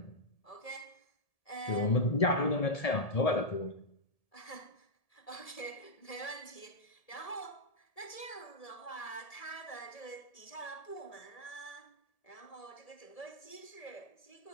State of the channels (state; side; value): late; right; 1.7 ms